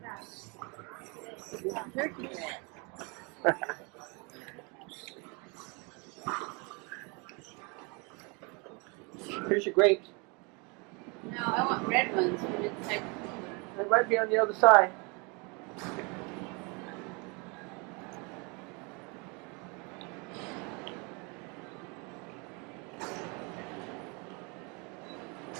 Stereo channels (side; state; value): left; quieter; 30.9 dB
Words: Turkey red. Here's your grapes. No, I want red ones from inside the cooler. They might be on the other side.